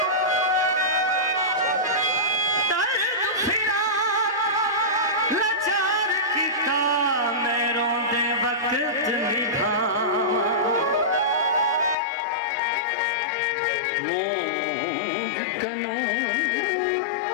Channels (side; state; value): right; drops out; at 12.0 s